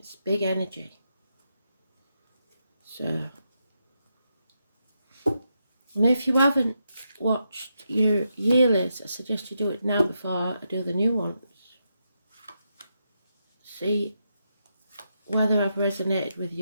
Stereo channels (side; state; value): both; inverted; correlation -0.83